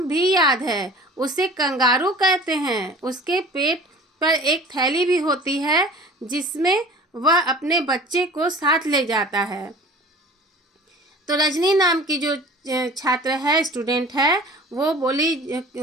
भी याद है, उसे कंगारू कहते हैं। उसके पेट पर एक थैली भी होती है जिसमें वह अपने बच्चे को साथ ले जाता है। तो रजनी नाम की जो छात्र है, स्टूडेंट है, वो बोली,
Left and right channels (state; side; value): normal; both; correlation 0.43